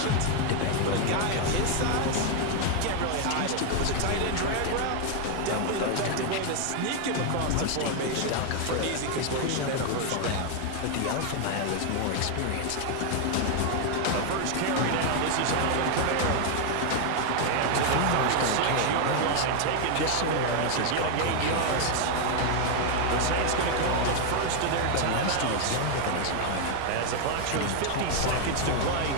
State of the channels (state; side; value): different; both; correlation 0.00